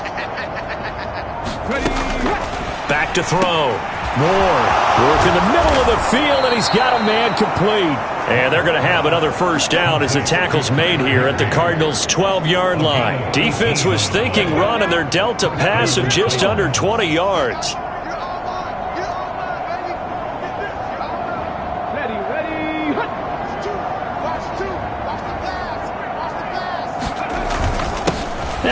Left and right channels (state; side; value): identical; both; correlation 1.00